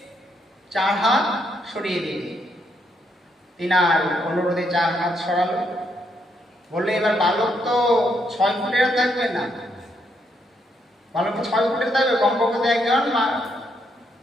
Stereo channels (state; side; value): normal; both; correlation 0.76